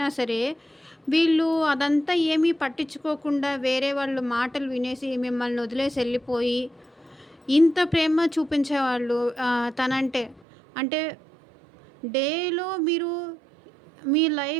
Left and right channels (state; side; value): drops out; left; at 10.4 s